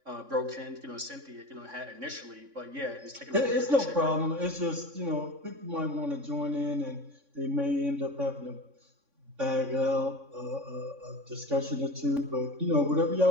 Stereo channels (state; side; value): late; left; 3.6 ms